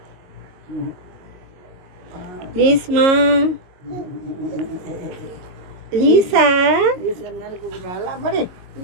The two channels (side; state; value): left; late; 22 ms